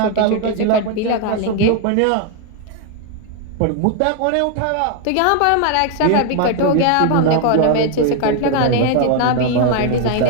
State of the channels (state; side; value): different; both; correlation 0.00